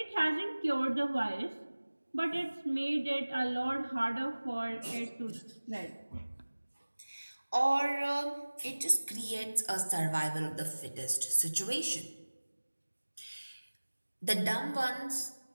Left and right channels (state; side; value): inverted; both; correlation -1.00